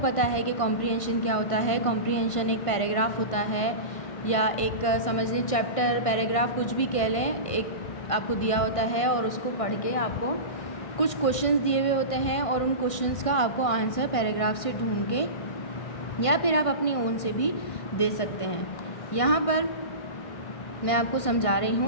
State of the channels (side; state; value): right; late; 1.5 ms